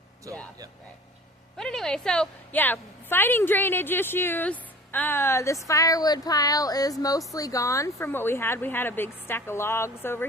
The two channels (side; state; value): both; normal; correlation 0.43